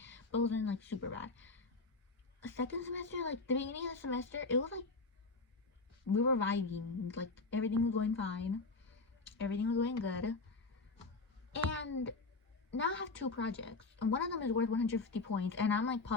but it wasn't super bad. Second semester, the beginning of the semester, it was we were vibing, everything was going fine, everything was going good. And now I have two projects, and one of them is worth 150 points, and I'm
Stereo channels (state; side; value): quieter; right; 3.6 dB